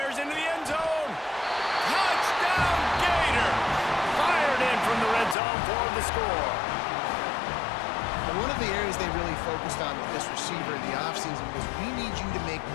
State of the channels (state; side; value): drops out; right; at 5.4 s